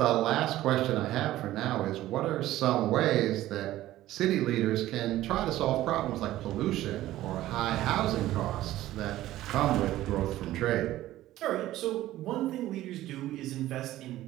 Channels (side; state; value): left; quieter; 14.9 dB